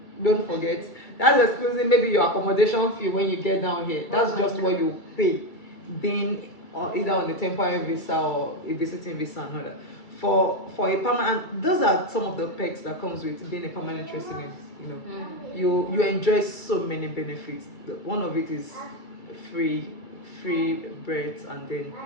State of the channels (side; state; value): right; late; 2.3 ms